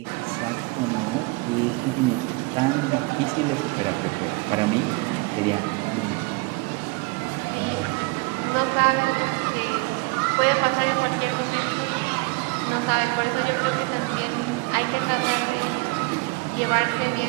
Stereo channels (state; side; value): quieter; left; 26.0 dB